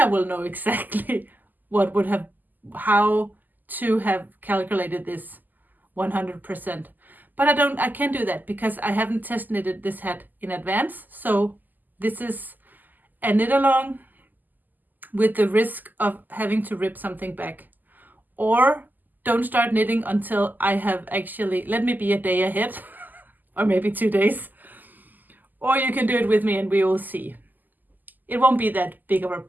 I will know exactly how to have calculated this 100%. But I can't do that because I haven't test knitted this hat in advance. So this is a knit along with the risk of having to rip something back. Or don't start knitting until I have actually, let me be a day ahead or maybe 2 days. Or you can do it with me and we will see. It won't be that big of a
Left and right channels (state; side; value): late; left; 0.085 ms